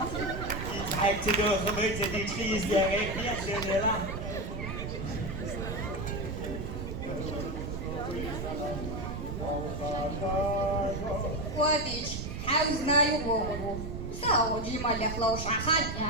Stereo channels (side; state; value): right; noise; rumble, 5 dB below the sound